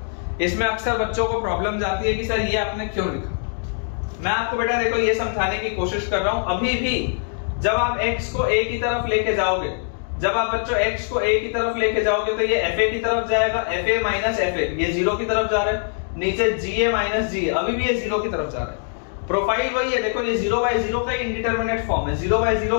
इसमें अक्सर बच्चों को प्रॉब्लम जाती है कि सर ये आपने क्यों लिखा। मैं आपको बेटा देखो ये समझाने की कोशिश कर रहा हूं। अभी भी जब आप x को a की तरफ लेके जाओगे, जब आप बच्चों x को a की तरफ लेके जाओगे तो ये fa की तरफ जाएगा, fa माइनस fa ये 0 की तरफ जा रहा है, नीचे ga माइनस ga अभी भी ये 0 की तरफ जा रहा है। प्रोफाइल वही है, देखो ये 0/0 का इंडिटरमिनेट फॉर्म है,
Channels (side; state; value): right; silent; digital silence